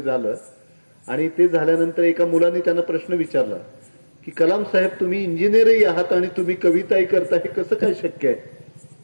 आणि ते झाल्यानंतर एका मुलाने त्यांना प्रश्न विचारला की कलाम साहेब, तुम्ही इंजिनियरही आहात आणि तुम्ही कविताही करता, हे कसं काय शक्य आहे?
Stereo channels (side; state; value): both; inverted; correlation -1.00